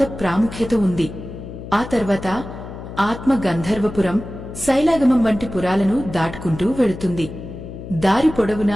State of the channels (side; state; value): left; noise; hum, 11 dB below the sound